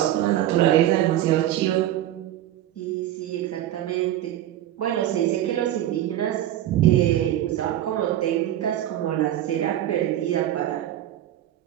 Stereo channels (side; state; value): left; quieter; 12.8 dB